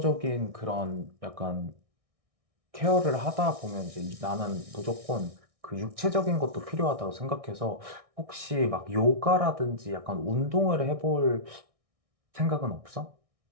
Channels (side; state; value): left; late; 1.6 ms